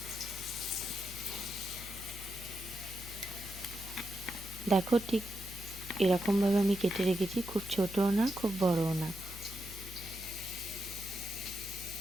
দেখো, ঠিক এরকমভাবে আমি কেটে রেখেছি, খুব ছোটও না খুব বড়ও না।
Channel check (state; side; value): noise; left; hum, 13 dB below the sound